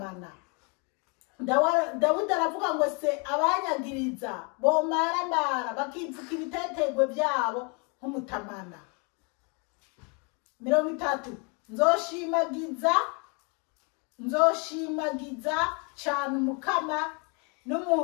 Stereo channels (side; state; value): right; quieter; 34.3 dB